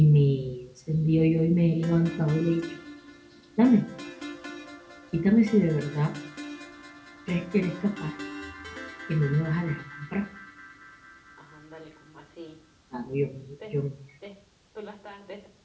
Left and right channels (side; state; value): both; identical; correlation 1.00